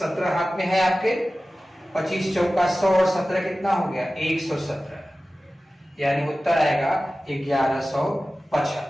हाथ में है आपके। 25 चौका 100 और 17 कितना हो गया 117, यानी उत्तर आएगा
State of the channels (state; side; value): normal; both; correlation 0.96